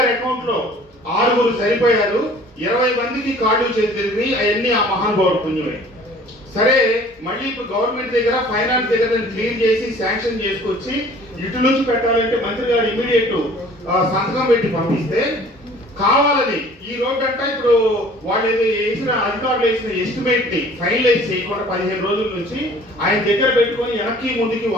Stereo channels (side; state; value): both; normal; correlation 0.51